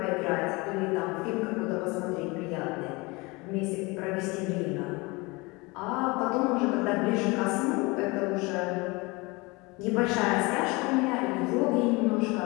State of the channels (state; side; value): quieter; right; 25.2 dB